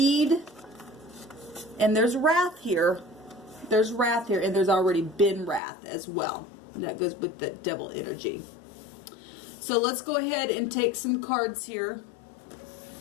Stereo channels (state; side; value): drops out; right; at 5.6 s